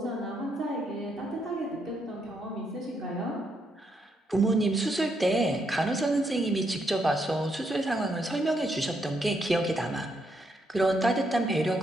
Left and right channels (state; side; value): normal; both; correlation 0.77